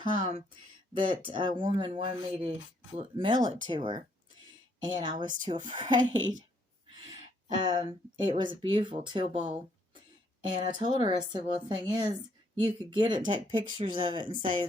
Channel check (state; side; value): normal; both; correlation 0.70